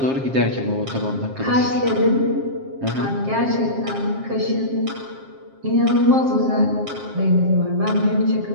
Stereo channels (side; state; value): left; late; 7.5 ms